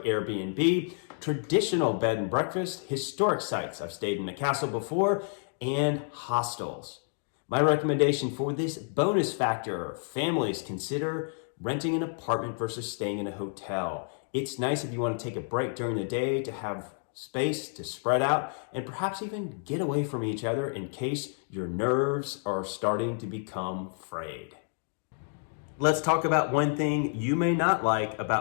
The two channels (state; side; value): silent; right; 58 dB below the other